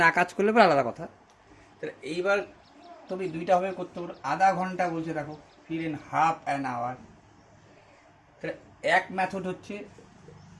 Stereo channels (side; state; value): both; identical; correlation 1.00